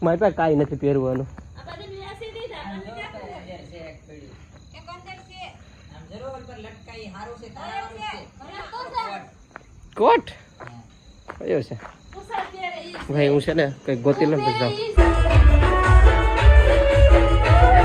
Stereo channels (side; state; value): both; identical; correlation 1.00